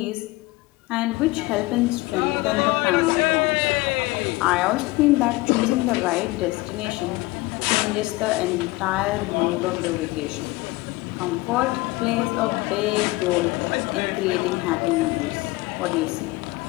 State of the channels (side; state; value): right; quieter; 21.1 dB